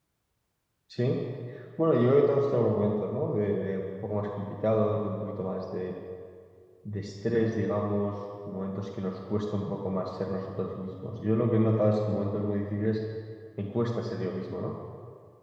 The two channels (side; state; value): both; identical; correlation 1.00